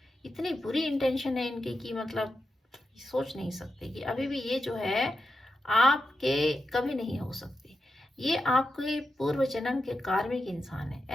इतनी बुरी इंटेंशन है इनकी कि मतलब सोच नहीं सकते कि अभी भी ये जो है आपके कभी नहीं हो सकते। ये आपके पूर्व जन्म के कार्मिक इंसान है,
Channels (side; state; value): both; normal; correlation 0.88